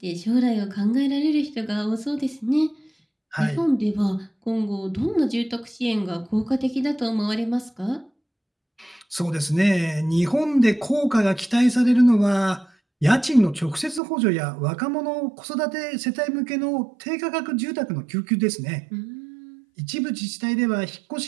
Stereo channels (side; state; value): left; drops out; at 14.0 s